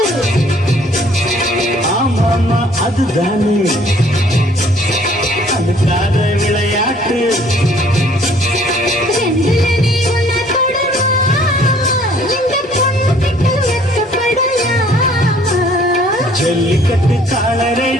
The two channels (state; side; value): normal; both; correlation 0.58